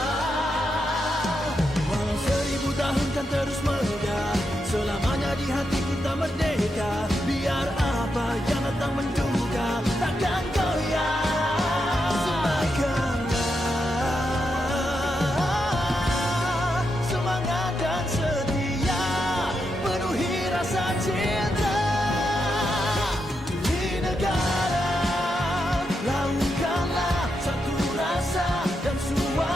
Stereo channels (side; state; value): both; normal; correlation 0.84